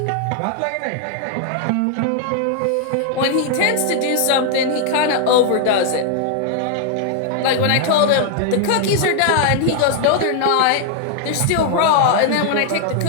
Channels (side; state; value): both; different; correlation 0.00